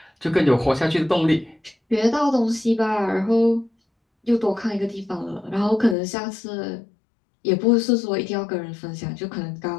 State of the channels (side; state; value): right; drops out; at 6.0 s